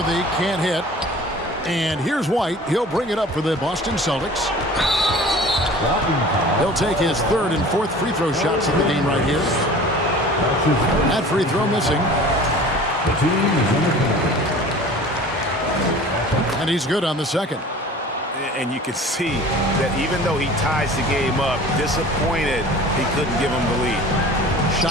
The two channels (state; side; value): normal; both; correlation 0.43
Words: can't hit. And here's White. He'll bring it up for the Boston Celtics. He'll take his 3rd and 4th free throw shots of the game right here. That free throw missing. And he's good on the second. And you can see that even though he ties the game up, disappointed he couldn't give him the lead.